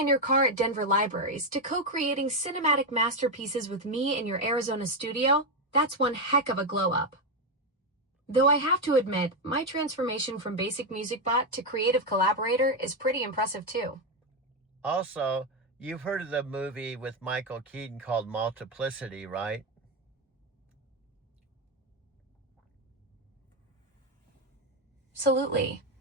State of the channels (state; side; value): normal; both; correlation 0.07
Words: your car at Denver libraries to co-creating cinematic masterpieces with me in your Arizona studio, that's one heck of a glow-up. Though I have to admit, my transformation from basic music bot to creative collaborator is pretty impressive too. Also, you've heard of the movie with Michael Keaton called Multiplicity, right? Absolutely.